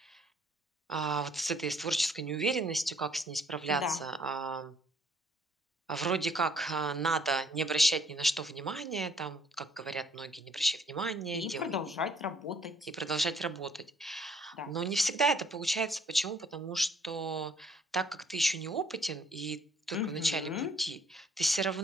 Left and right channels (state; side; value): normal; both; correlation 0.63